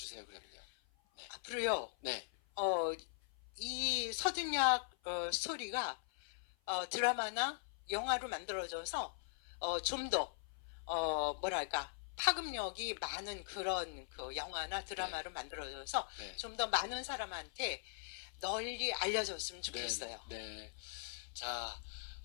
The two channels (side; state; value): right; silent; 51 dB below the other